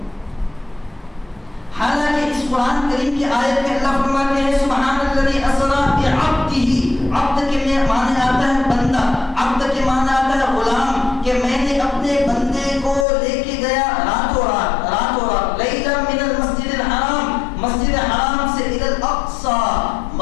حالانکہ اس قرآن کریم کی آیت میں اللہ فرماتے ہیں سبحان الذی اسری بعبدہ۔ عبد کے معنی آتا ہے بندہ، عبد کے معنی آتا ہے غلام، کہ میں نے اپنے بندے کو لے کے گیا راتوں رات لیلا من المسجد الحرام، مسجد حرام سے الی الاقصیٰ،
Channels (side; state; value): right; drops out; at 13.1 s